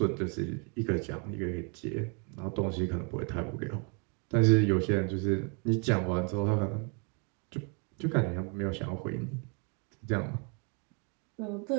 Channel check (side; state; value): left; quieter; 36.2 dB